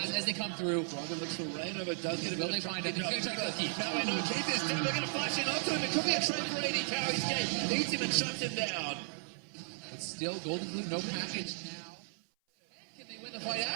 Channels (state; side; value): silent; left; 54 dB below the other